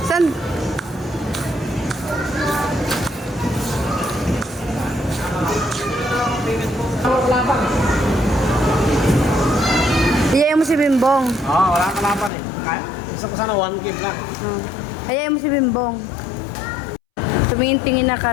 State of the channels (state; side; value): drops out; right; at 12.3 s